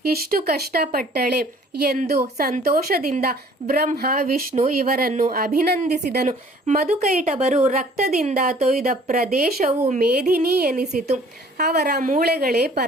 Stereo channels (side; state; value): both; normal; correlation 0.54